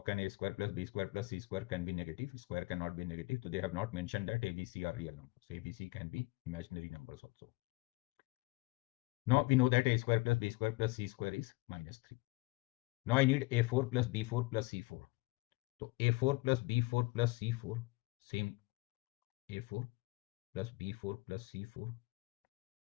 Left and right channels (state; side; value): quieter; right; 24.0 dB